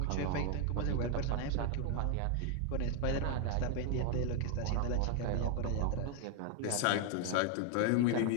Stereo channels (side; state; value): both; different; correlation 0.01